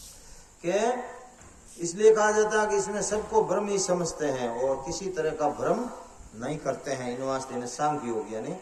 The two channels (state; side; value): identical; both; correlation 1.00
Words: के इसलिए कहा जाता है कि इसमें सबको ब्रह्म ही समझते हैं और किसी तरह का भ्रम नहीं करते हैं। इन वास्ते इन्हें सांख्य योग यानी